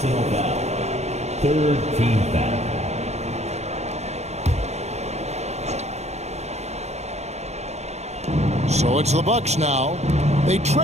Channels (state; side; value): late; left; 0.32 ms